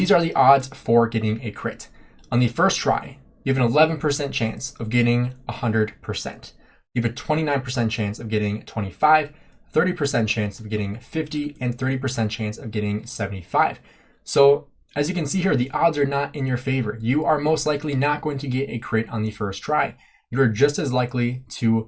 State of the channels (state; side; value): identical; both; correlation 1.00